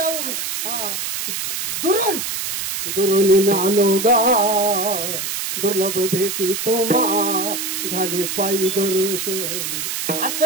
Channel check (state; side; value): noise; right; hiss, 3 dB below the sound